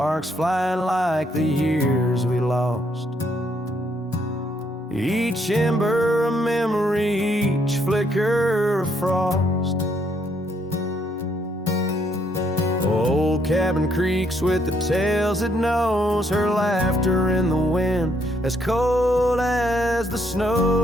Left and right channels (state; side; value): normal; both; correlation 0.71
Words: flying like the years we lost. Each ember a memory, each flicker a frost. Old cabin creaks with the tales it knows, her laughter in the wind as cold as the snows.